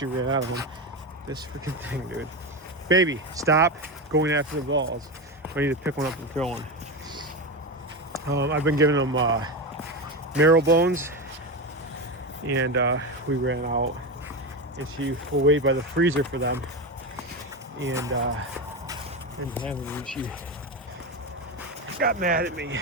ran out of them. This freaking thing, dude. Baby, stop going after the balls. I need to pick one up and throw one. I've been giving them marrow bones, and we ran out, and she will wait by the freezer for them, and she got mad at me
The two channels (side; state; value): both; normal; correlation 0.17